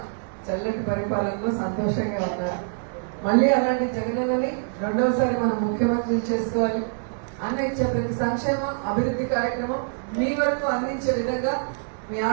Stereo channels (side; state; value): left; silent; digital silence